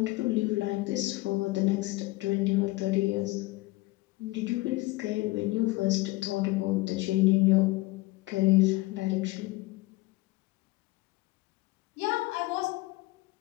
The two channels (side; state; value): right; quieter; 20.5 dB